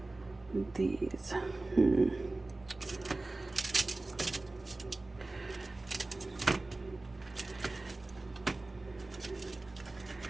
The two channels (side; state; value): left; quieter; 3.0 dB